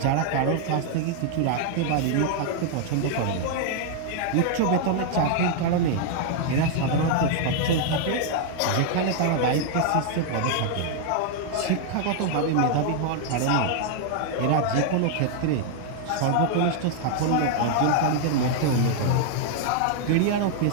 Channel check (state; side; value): different; both; correlation 0.00